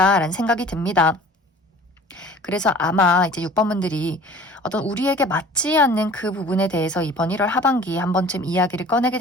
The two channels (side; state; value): both; normal; correlation 0.46